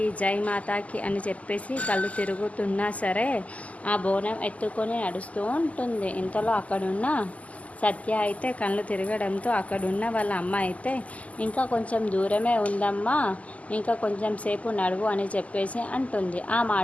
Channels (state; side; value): late; right; 0.071 ms